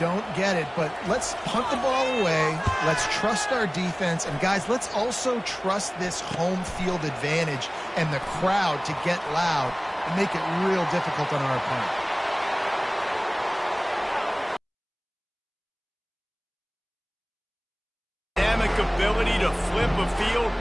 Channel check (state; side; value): identical; both; correlation 1.00